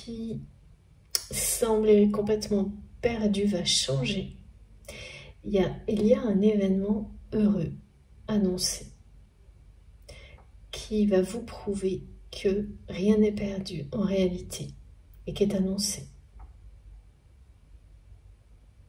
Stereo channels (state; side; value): identical; both; correlation 1.00